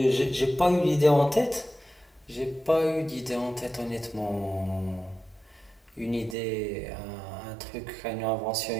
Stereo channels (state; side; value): drops out; left; at 6.4 s